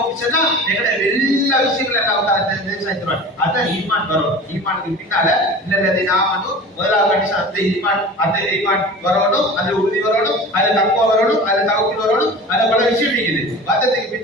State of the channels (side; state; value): both; normal; correlation 0.37